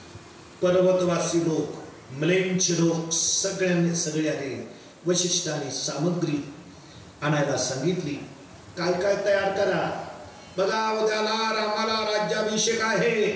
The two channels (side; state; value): both; identical; correlation 1.00